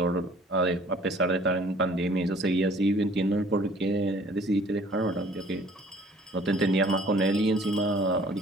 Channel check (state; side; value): normal; both; correlation 0.54